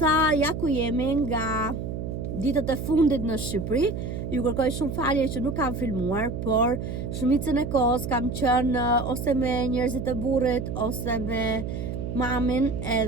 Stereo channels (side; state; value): right; noise; hum, 5 dB below the sound